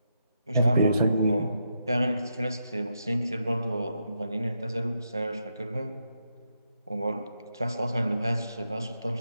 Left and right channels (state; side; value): inverted; both; correlation -0.81